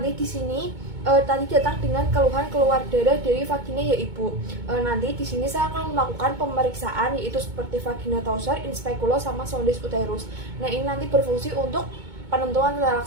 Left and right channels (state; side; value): late; left; 2.2 ms